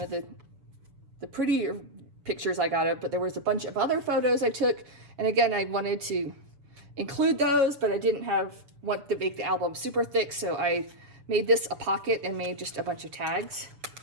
of the prettier pictures I got of, but there was a bunch of other photos I took. And again, I wanted to include those, but I didn't want to make the album super thick, so I made this a pocket and made just a bunch of tags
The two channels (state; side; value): late; left; 7.2 ms